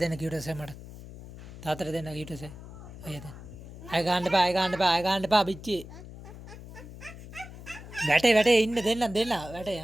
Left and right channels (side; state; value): left; noise; hum, 15 dB below the sound